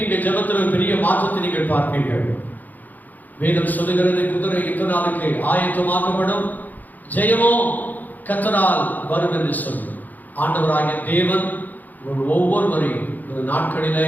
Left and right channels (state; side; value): late; right; 0.083 ms